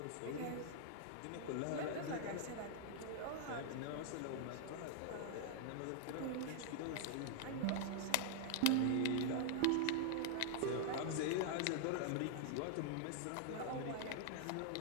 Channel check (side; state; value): both; different; correlation -0.01